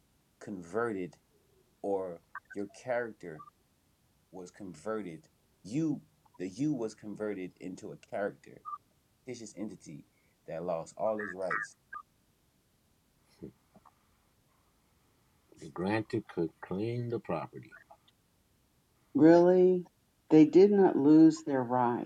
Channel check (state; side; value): identical; both; correlation 1.00